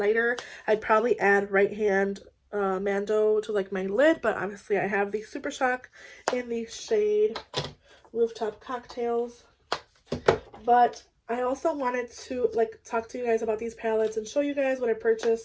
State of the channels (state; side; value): identical; both; correlation 1.00